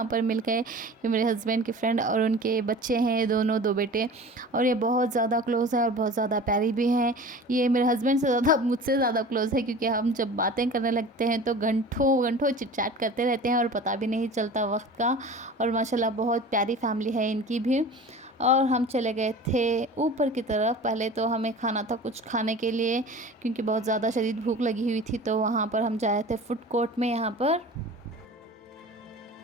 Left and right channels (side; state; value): both; normal; correlation 0.39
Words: पर मिल गए कि मेरे हस्बैंड की फ्रेंड और उनके बच्चे हैं, दोनों 2 बेटे, और ये बहुत ज़्यादा क्लोज़ है और बहुत ज़्यादा प्यारी भी हैं। ये मेरे हस्बैंड से ज़्यादा मुझसे ज़्यादा क्लोज़ है, क्योंकि हम जब बातें करने लगते हैं तो घंटों घंटों चिट-चैट करते रहते हैं और पता भी नहीं चलता वक्त का। और माशाल्लाह बहुत प्यारी फैमिली है इनकी भी। और हम चले गए थे ऊपर की तरफ। पहले तो हमें खाना था कुछ खाने के लिए, क्योंकि बहुत ज़्यादा शदीद भूख लगी हुई थी, तो वहाँ पर हम जाए थे फूड कोर्ट में यहाँ पर।